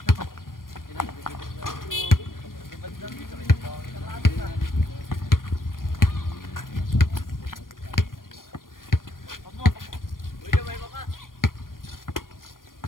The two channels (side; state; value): right; late; 0.91 ms